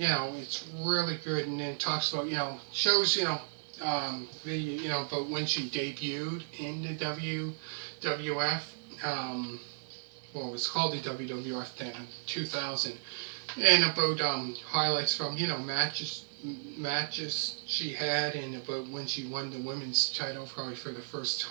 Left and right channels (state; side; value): silent; left; 55 dB below the other